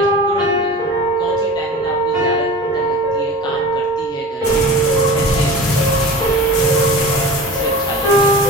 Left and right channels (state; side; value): normal; both; correlation 0.35